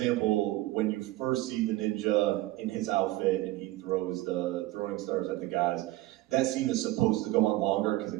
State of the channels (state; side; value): quieter; left; 17.3 dB